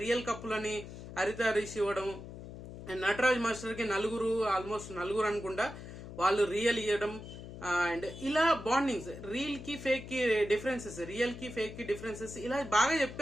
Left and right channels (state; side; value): noise; left; hum, 12 dB below the sound